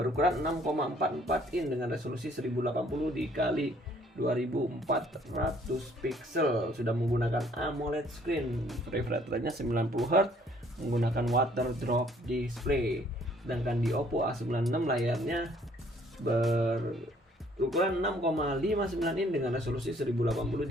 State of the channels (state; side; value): normal; both; correlation 0.61